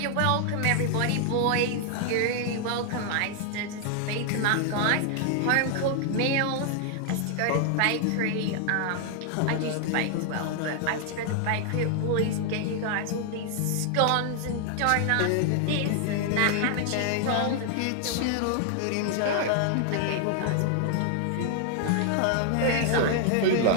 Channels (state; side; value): different; both; correlation 0.00